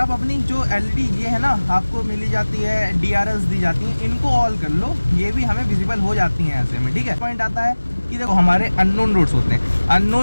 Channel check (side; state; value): both; inverted; correlation -1.00